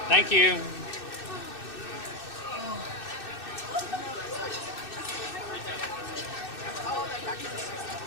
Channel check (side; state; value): right; late; 2.6 ms